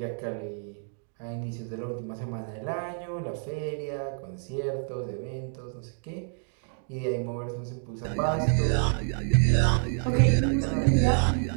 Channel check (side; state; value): left; silent; 59 dB below the other